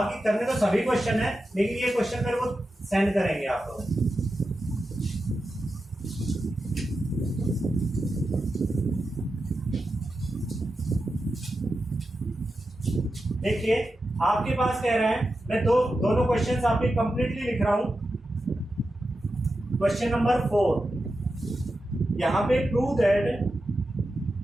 करने तो सभी क्वेश्चन है, लेकिन ये क्वेश्चन मेरे को सेंड करेंगे आप लोग। देखिए आपके पास कह रहे हैं, मैं दोनों क्वेश्चन आपके कंप्लीटली लिख रहा हूं। क्वेश्चन नंबर 4, यहां पे prove that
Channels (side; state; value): both; normal; correlation 0.90